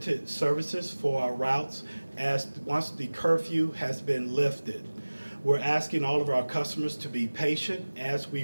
services for our routes once the curfew has been lifted. We're asking all of our customers to be patient as we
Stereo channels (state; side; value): inverted; both; correlation -1.00